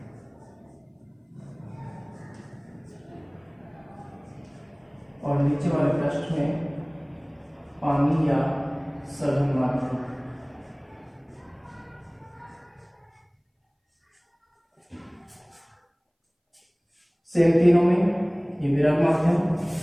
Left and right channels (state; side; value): identical; both; correlation 1.00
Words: और नीचे वाले पृष्ठ में पानी या सघन माध्यम। सेम तीनों में ये विरल माध्यम